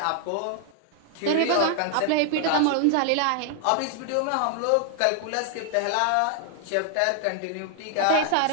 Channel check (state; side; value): different; both; correlation 0.00